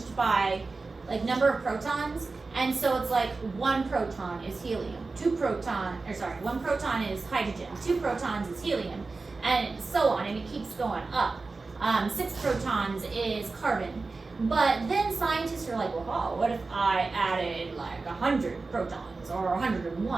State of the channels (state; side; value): quieter; left; 3.8 dB